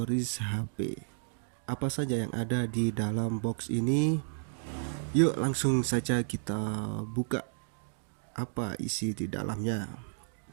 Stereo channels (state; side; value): silent; left; digital silence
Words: HP. Apa saja yang ada di dalam box ini? Yuk langsung saja kita buka apa isi di dalamnya.